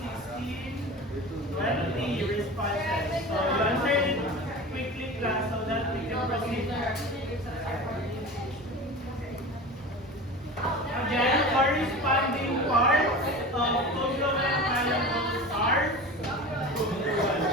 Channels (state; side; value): normal; both; correlation 0.33